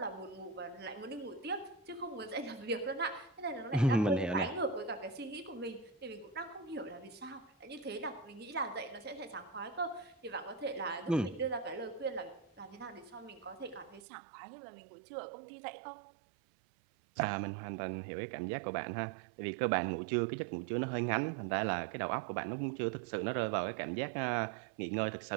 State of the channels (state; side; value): drops out; left; at 14.0 s